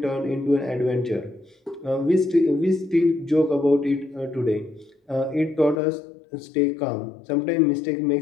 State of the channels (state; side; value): drops out; right; at 5.8 s